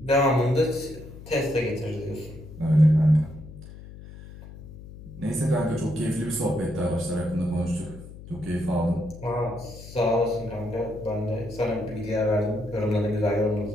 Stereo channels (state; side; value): noise; left; hum, 16 dB below the sound